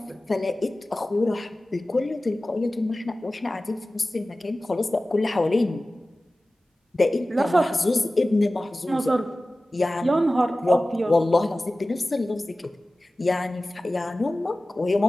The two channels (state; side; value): normal; both; correlation 0.96